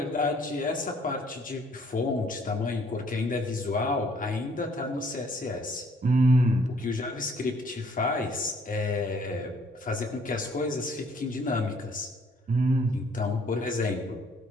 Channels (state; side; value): normal; both; correlation 0.61